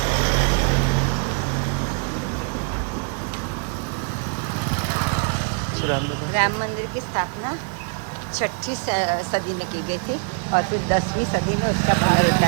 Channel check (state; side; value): quieter; left; 39.0 dB